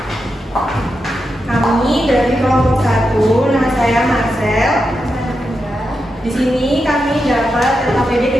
Kami dari kelompok 1, nama saya Marcel. Di sini kami dapat LKPD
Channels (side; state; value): both; normal; correlation 0.87